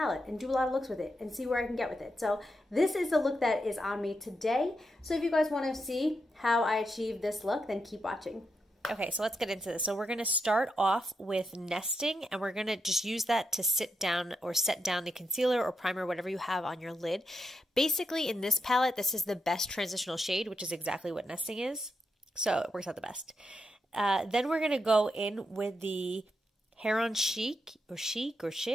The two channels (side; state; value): both; normal; correlation 0.84